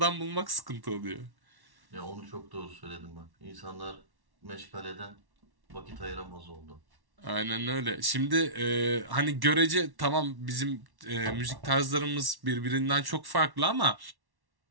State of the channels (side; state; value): left; late; 1.1 ms